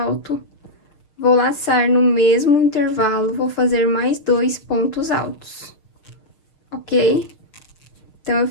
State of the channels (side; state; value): right; late; 6.6 ms